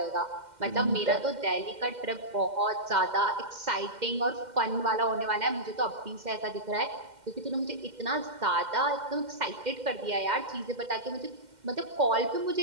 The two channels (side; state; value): left; late; 2.1 ms